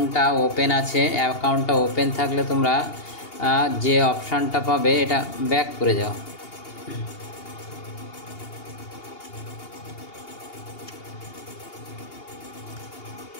ওপেন আছে। অ্যাকাউন্টটা ওপেন থাকলে তোমরা যে অপশানটা পাবে এটা ব্যাক করে যাও।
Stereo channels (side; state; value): right; late; 2.8 ms